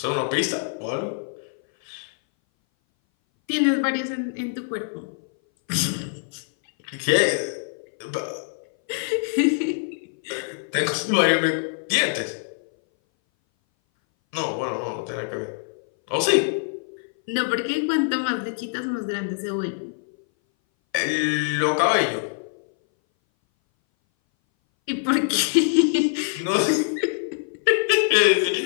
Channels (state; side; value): silent; right; 59 dB below the other